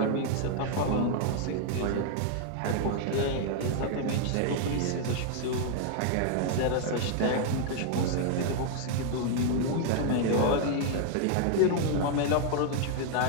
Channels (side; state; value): both; different; correlation 0.00